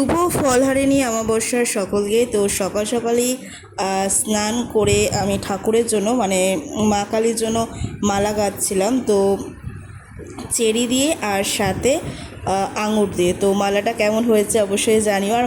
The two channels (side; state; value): both; identical; correlation 1.00